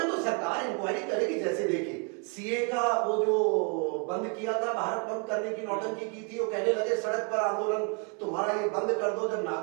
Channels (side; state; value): left; quieter; 36.0 dB